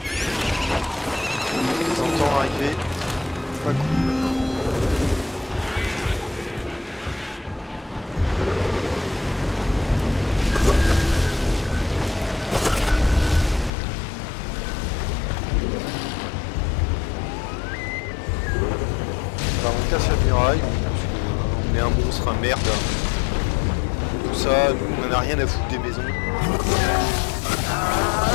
Je les entends arriver. Pas cool. On casse la muraille, on est un monstre, un merde. Tout ça, nous, on n'a rien à foutre des maisons.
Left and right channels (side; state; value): right; drops out; at 13.7 s